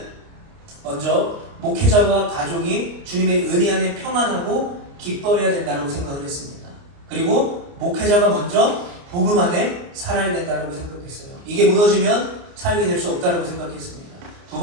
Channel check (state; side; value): late; left; 29 ms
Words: 먼저 목회자와 가족이 주님의 은혜 안에 평안하고 기뻐해야 된다고 생각을 했습니다. 그리고 목회자가 먼저 복음 안에 살아야 된다고 생각했어요. 이게 무너지면 사역이 될 수 없다고 생각했습니다. 두